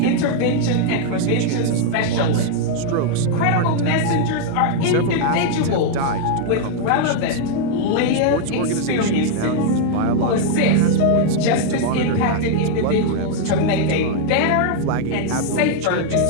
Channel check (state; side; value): different; both; correlation 0.00